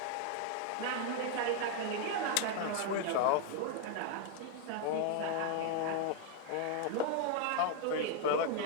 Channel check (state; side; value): different; both; correlation 0.00